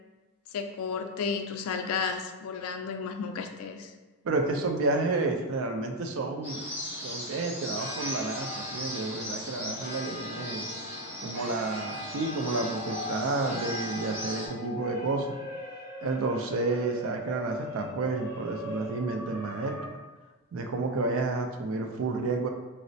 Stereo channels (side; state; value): both; normal; correlation 0.09